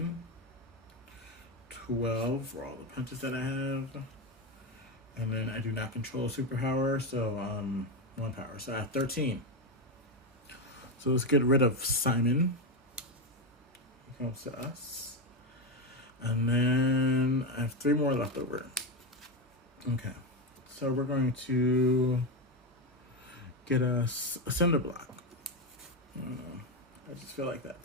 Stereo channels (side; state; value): both; normal; correlation 0.12